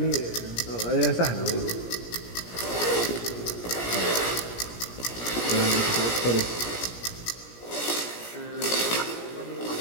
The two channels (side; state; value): right; late; 17 ms